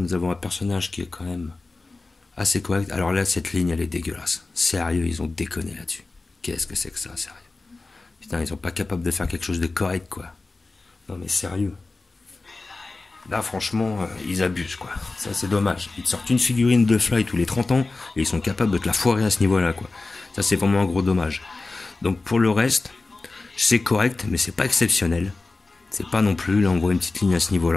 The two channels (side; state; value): right; quieter; 3.5 dB